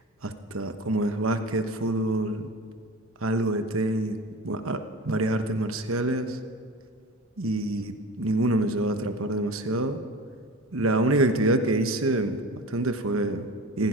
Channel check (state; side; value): normal; both; correlation 0.34